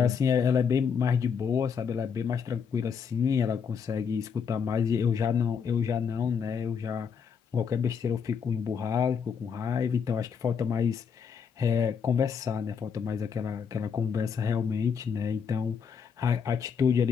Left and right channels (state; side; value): quieter; right; 6.6 dB